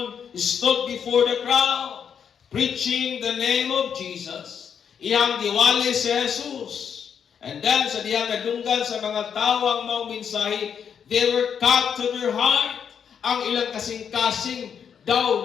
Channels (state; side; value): quieter; right; 7.5 dB